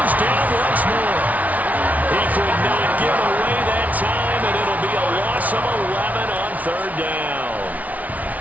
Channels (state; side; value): late; left; 0.072 ms